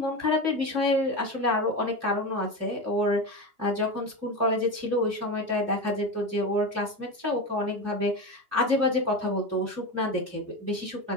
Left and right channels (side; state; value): left; late; 2.8 ms